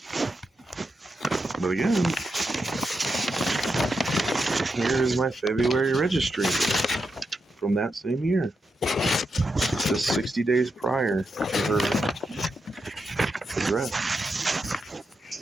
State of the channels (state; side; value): normal; both; correlation 0.85